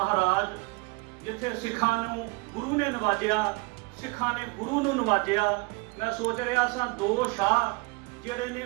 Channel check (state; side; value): quieter; left; 26.7 dB